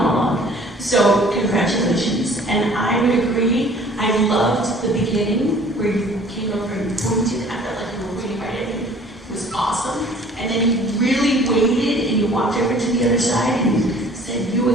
So congratulations. And I would agree, I loved the beginning where you came over and pointed. I felt like you were really right at me. It was awesome. And then you really waited and you walked over to the other side and you said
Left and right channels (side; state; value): both; normal; correlation 0.52